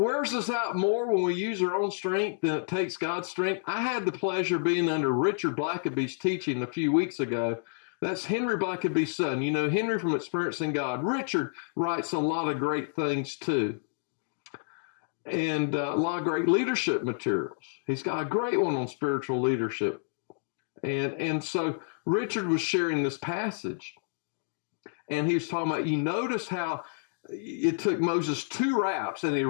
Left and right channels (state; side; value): silent; right; digital silence